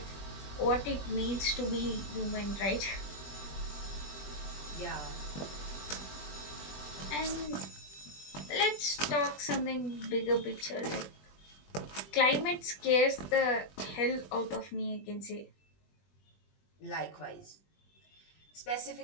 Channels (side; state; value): right; late; 20 ms